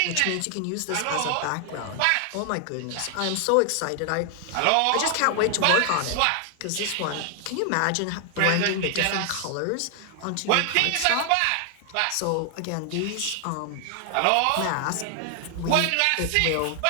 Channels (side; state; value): both; different; correlation 0.00